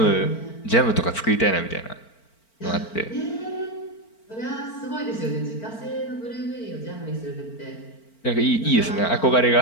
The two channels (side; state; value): right; late; 4.4 ms